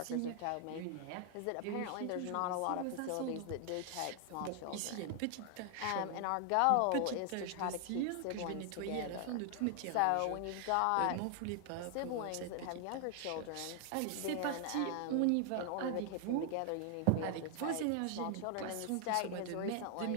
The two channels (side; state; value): both; different; correlation 0.00